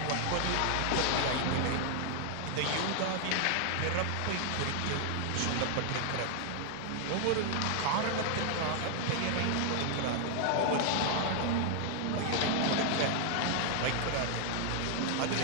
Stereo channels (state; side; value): different; both; correlation 0.00